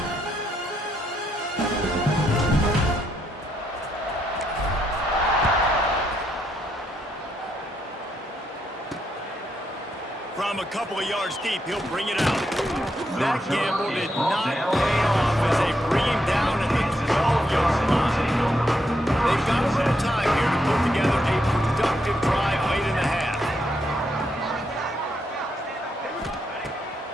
From a couple of yards deep, he'll bring it out. That gamble did not pay off as they bring him down at the 12-yard line. They've got a little time here to put together a productive drive late in the half.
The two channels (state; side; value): normal; both; correlation 0.79